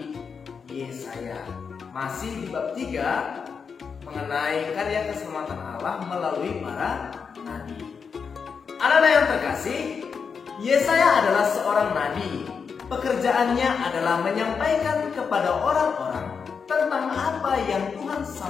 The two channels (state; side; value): quieter; right; 5.9 dB